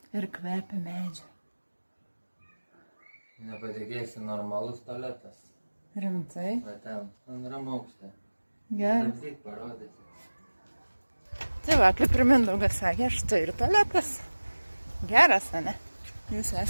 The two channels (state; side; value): inverted; both; correlation -1.00